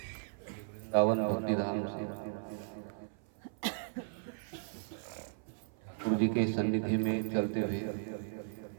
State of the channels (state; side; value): silent; left; 54 dB below the other